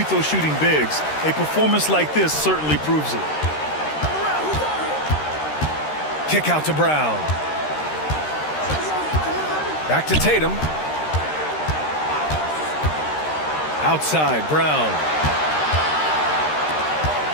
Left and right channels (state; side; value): late; right; 13 ms